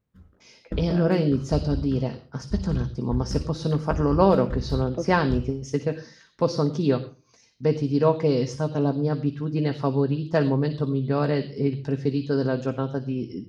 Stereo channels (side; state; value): both; identical; correlation 1.00